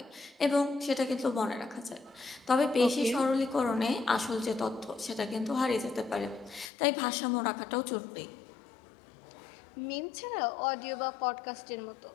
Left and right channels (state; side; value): drops out; right; at 6.7 s